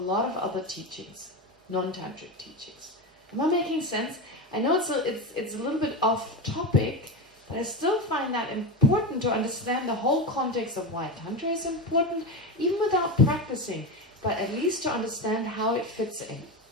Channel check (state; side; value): normal; both; correlation 0.18